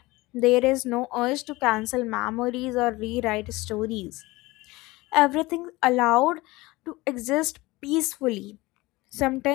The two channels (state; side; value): quieter; right; 21.0 dB